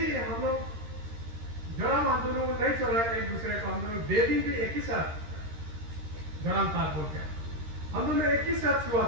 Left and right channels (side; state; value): left; late; 13 ms